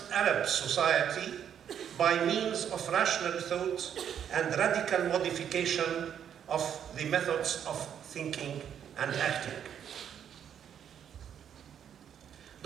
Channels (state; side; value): quieter; left; 8.9 dB